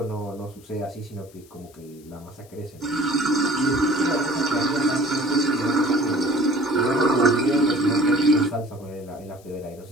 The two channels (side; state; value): left; noise; hiss, 27 dB below the sound